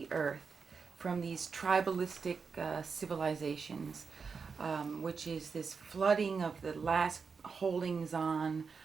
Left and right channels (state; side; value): quieter; left; 5.3 dB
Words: earth from these tribalistic civilizations, which is this flooding of the last holdings on